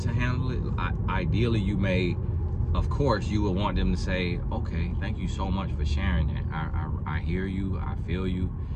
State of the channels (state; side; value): identical; both; correlation 1.00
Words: handle it. Ideally, you may, of course, you would want them to say, okay, thank you so much for sharing that. I hear you, I feel you,